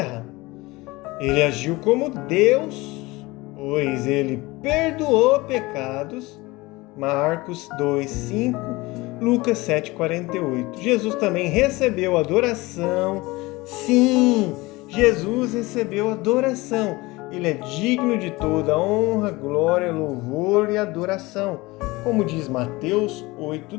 Ele agiu como Deus, pois ele perdoou pecados. Marcos 2,5, Lucas 7,48. Jesus também recebeu adoração. Sim, Jesus recebeu adoração. Ele é digno de toda honra, glória, louvor e adoração, como diz Mateus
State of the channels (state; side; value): quieter; right; 21.8 dB